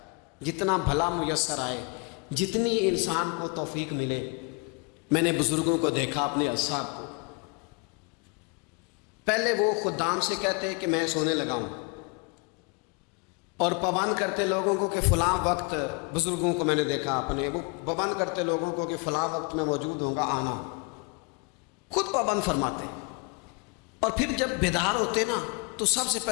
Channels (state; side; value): quieter; right; 32.3 dB